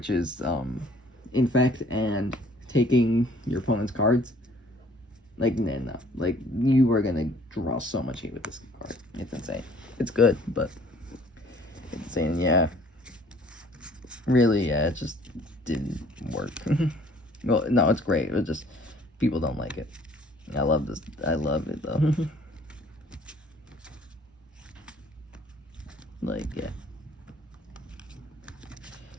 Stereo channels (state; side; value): normal; both; correlation 0.56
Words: is Infect and taking your opponent's cards. No. You were gonna draw so much hate with this card. It's insane. It's good, but it's insane. Yeah, really, yeah, it just didn't work. Well, no, it's great. It was just people don't like it. I love this. I love it though. Yeah.